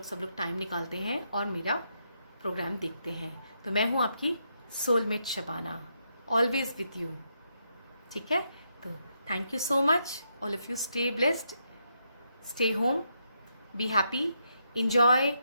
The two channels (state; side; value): inverted; both; correlation -0.80